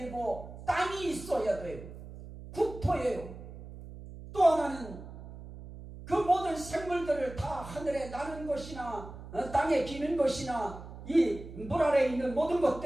땅이 있어야 돼요. 국토예요. 또 하나는 그 모든 생물들을 다 하늘에 나는 것이나 땅에 기는 것이나 이 물 아래에 있는 모든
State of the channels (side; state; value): right; noise; hum, 14 dB below the sound